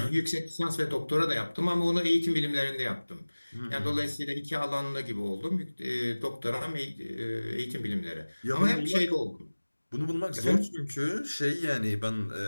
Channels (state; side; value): inverted; both; correlation -1.00